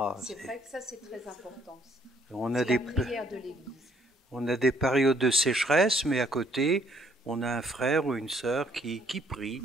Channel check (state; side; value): normal; both; correlation 0.66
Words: c'est vrai que ça c'est très important. On a la prière de l'Église. On a des périodes de sécheresse, mais à côté, on a un frère ou une sœur qui prie.